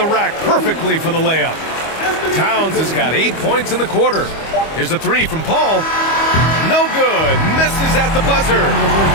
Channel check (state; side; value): late; right; 25 ms